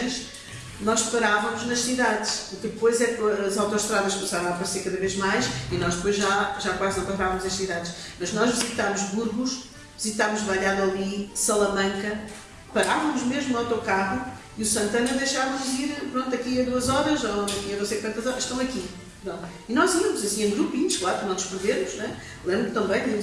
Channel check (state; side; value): identical; both; correlation 1.00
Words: nós parávamos nas cidades, depois é que as autoestradas começaram a aparecer cada vez mais e nós depois já quase não parávamos as cidades, mas nós visitámos Burgos, visitámos Valladolid, Salamanca, parávamos mesmo no autocarro e o Santana deixava-nos ir, pronto, aqui a 2 horas ou aqui a não sei quantas horas, estão aqui. Não. E nós íamos assim em grupinhos, claro, para não nos perdermos, né? Lembro-me também